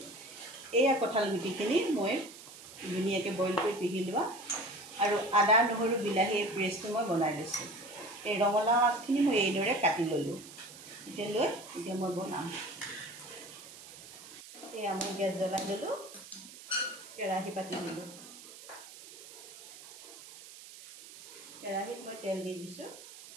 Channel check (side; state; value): right; noise; hiss, 16 dB below the sound